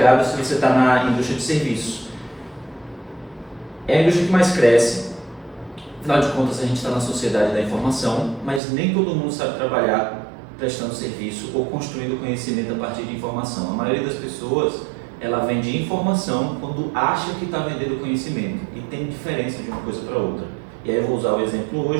se você está na indústria de serviço. É a indústria que mais cresce. Afinal de contas, a gente está na sociedade da informação, mas nem todo mundo sabe trabalhar prestando serviço ou construindo conhecimento a partir de informação. A maioria das pessoas, ela vende informação quando acha que está vendendo conhecimento, e tem diferença de uma coisa para outra. E aí eu vou usar o exemplo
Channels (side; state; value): left; drops out; at 8.6 s